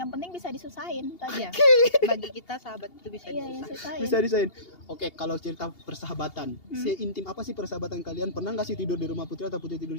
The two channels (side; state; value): right; late; 2.8 ms